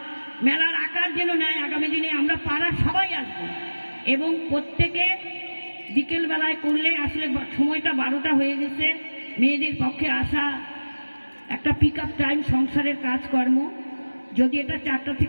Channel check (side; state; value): both; inverted; correlation -1.00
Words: মেলার আকার যেন নেয়। আগামী দিনে আমরা পাড়ার সবাই আসবো এবং প্রত্যেকে বিকেল বেলায় করলে, আসলে সময়টা 12টা হয়ে গেছে, মেয়েদের পক্ষে আসা একটা পিক আপ টাইম, সংসারের কাজকর্ম, যদি এটা 4টা